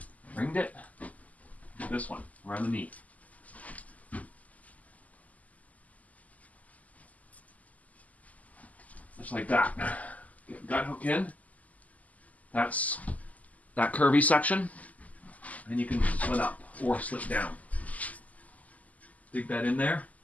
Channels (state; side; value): late; right; 0.074 ms